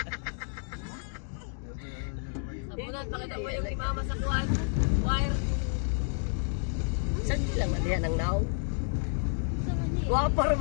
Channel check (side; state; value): right; silent; 58 dB below the other